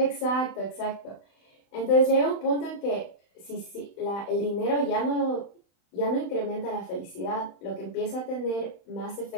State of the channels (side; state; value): right; late; 35 ms